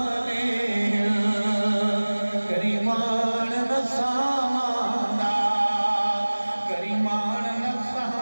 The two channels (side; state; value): both; inverted; correlation -1.00